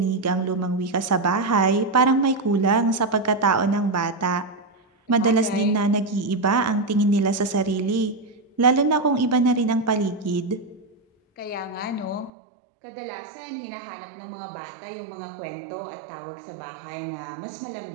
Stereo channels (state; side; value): drops out; left; at 12.3 s